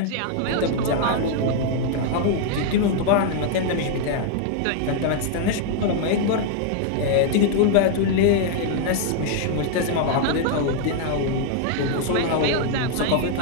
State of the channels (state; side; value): different; both; correlation -0.01